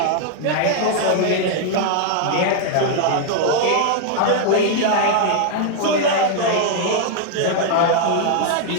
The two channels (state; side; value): different; both; correlation 0.00